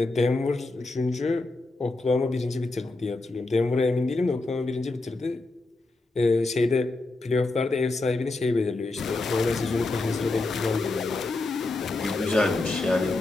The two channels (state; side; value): quieter; right; 3.1 dB